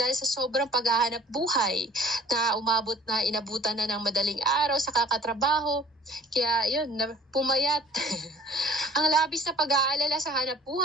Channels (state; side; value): normal; both; correlation 0.50